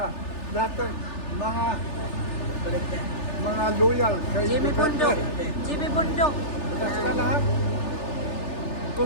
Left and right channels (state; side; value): late; right; 3.4 ms